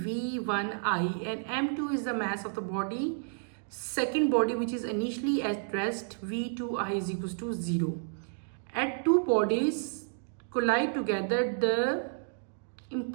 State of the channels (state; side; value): silent; left; digital silence